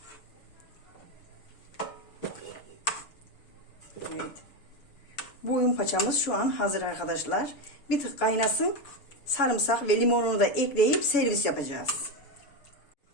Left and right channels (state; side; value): late; right; 7.0 ms